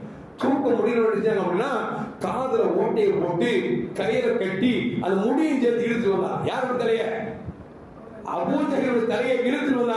தூக்க முடியல அப்படின்னா காதுல ஓட்டையை போட்டு கையில கட்டி அந்த முடியும் சேர்த்து இழுத்து வந்தாங்க. யாரோட தலைய? அபூ ஜஹல் தலையை இழுத்து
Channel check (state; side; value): identical; both; correlation 1.00